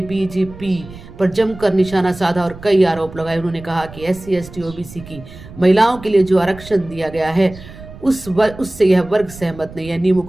बीजेपी पर जमकर निशाना साधा और कई आरोप लगाए। उन्होंने कहा कि SC ST OBC की महिलाओं के लिए जो आरक्षण दिया गया है उससे यह वर्ग सहमत नहीं है, नियमों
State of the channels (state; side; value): noise; right; rumble, 17 dB below the sound